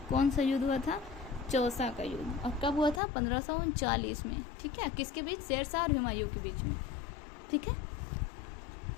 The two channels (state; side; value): drops out; right; at 3.0 s